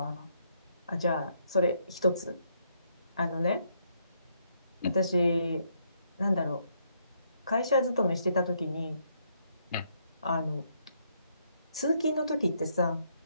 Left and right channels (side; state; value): both; inverted; correlation -0.73